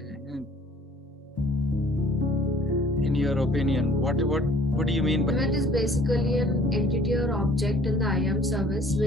your opinion? What do you mean by element? Is basically an entity or object in the IAM service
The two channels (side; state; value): both; normal; correlation 0.55